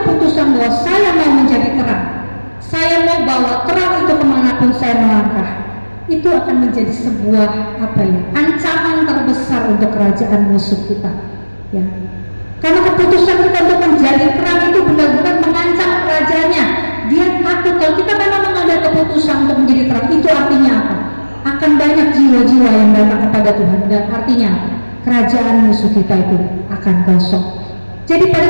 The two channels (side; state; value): both; inverted; correlation -1.00